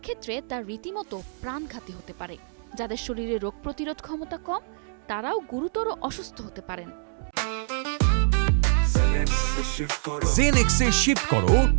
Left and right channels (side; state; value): left; silent; digital silence